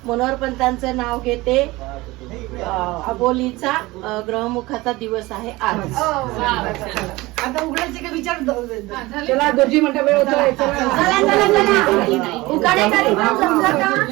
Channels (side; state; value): left; quieter; 20.6 dB